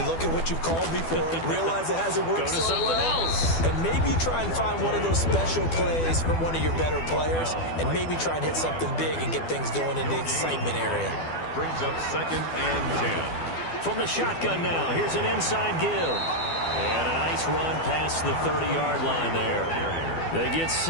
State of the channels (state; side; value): late; right; 12 ms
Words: look at what you've called before, realize it hasn't worked so well. Go to something else. And maybe you try and find one of those special plays from one of your better players, and maybe try and hit something big and get things going in the excitement area. Brings up 2nd and 10. From the shotgun now, here's an inside give. And a nice run past the 30-yard line there. They get